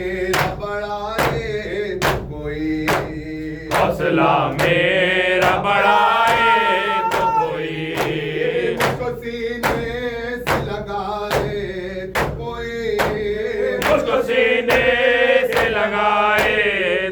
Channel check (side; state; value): both; identical; correlation 1.00